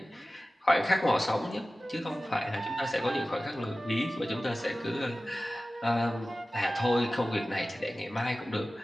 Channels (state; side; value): normal; both; correlation 0.96